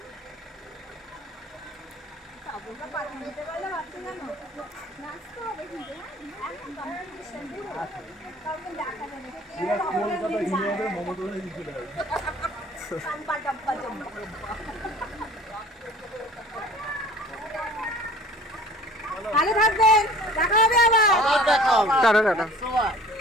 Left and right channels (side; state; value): both; normal; correlation 0.47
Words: কলকাতা হিন্দুদের মমতা ব্যানার্জি চলে যাবে ভালো থাকবেন দেখা হবে আবার আবার দেখাও টাটা টাটা।